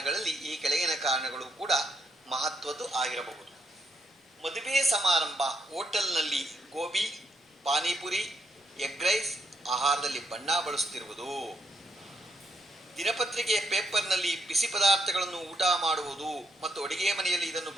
ಈ ಕೆಳಗಿನ ಕಾರಣಗಳು ಕೂಡ ಮಹತ್ವದ್ದು ಆಗಿರಬಹುದು. ಮದುವೆ ಸಮಾರಂಭ, ಹೋಟೆಲ್ನಲ್ಲಿ ಗೋಬಿ, ಪಾನಿಪುರಿ, ಎಗ್ ರೈಸ್ ಆಹಾರದಲ್ಲಿ ಬಣ್ಣ ಬಳಸುತ್ತಿರುವುದು, ದಿನಪತ್ರಿಕೆ ಪೇಪರ್ನಲ್ಲಿ ಬಿಸಿ ಪದಾರ್ಥಗಳನ್ನು ಊಟ ಮಾಡುವುದು ಮತ್ತು ಅಡುಗೆ ಮನೆಯಲ್ಲಿ ಇದನ್ನು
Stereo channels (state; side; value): normal; both; correlation 0.76